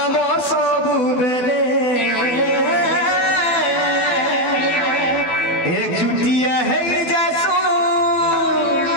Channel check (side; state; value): right; late; 12 ms